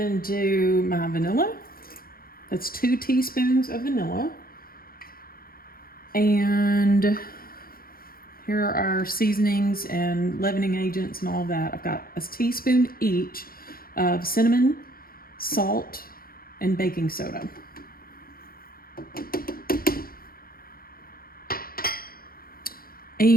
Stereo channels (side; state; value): right; late; 0.43 ms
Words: do my vanilla. That's 2 teaspoons of vanilla. And here are our seasonings and leavening agents and all that. I've got a teaspoon each of cinnamon, salt, and baking soda.